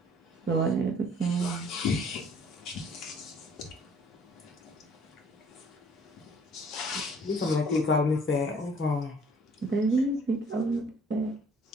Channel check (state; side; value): normal; both; correlation 0.57